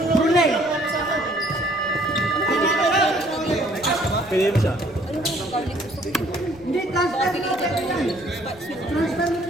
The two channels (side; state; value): right; noise; rumble, 24 dB below the sound